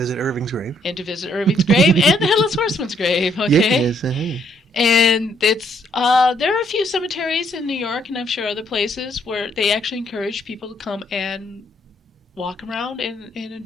Irving's grave. And the Headless Horseman's grave, okay? Yes. And it's there are a few cemeteries in New York, and I'm sure other places, where they actually encourage people to come and walk around and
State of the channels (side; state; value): both; normal; correlation 0.70